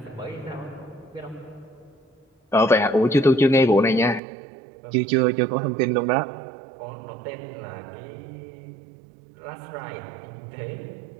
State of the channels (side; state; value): left; drops out; at 4.2 s